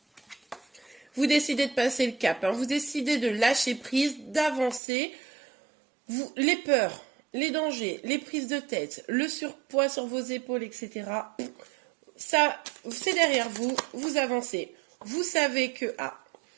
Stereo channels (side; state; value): left; drops out; at 4.8 s